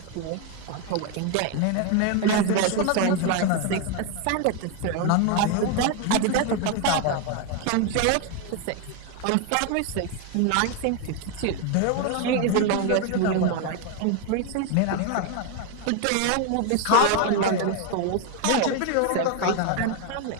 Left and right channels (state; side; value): different; both; correlation 0.01